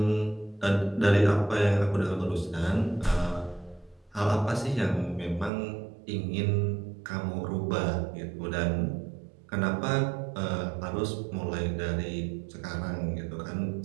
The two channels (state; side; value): drops out; left; at 5.5 s